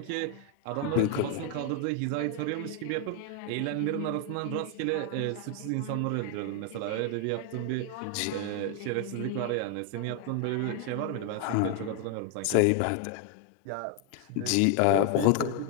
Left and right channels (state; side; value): different; both; correlation 0.00